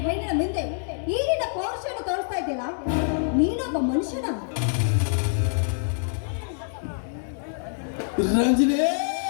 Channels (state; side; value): silent; right; digital silence